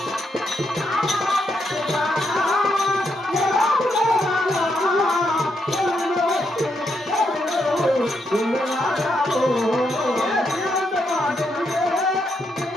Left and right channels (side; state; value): both; normal; correlation 0.79